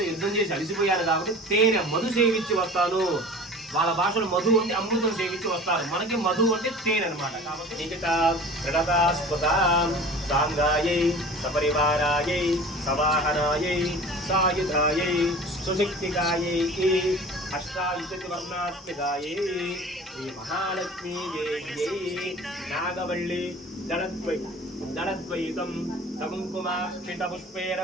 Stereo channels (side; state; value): both; normal; correlation 0.41